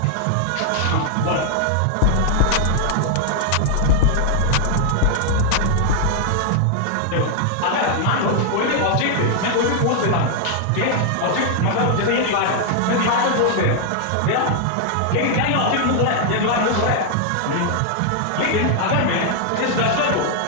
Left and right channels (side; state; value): both; different; correlation 0.00